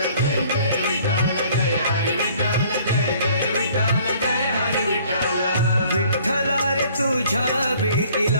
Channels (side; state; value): both; inverted; correlation -0.56